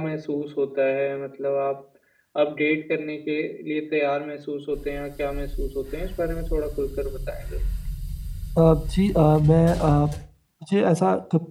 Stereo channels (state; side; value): identical; both; correlation 1.00